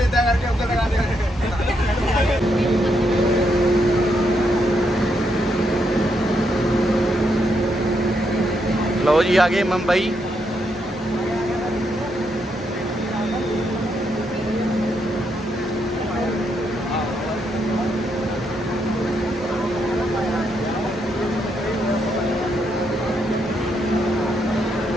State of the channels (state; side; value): normal; both; correlation 0.79